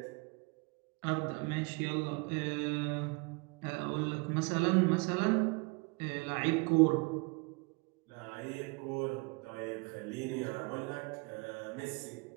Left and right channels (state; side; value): quieter; left; 29.7 dB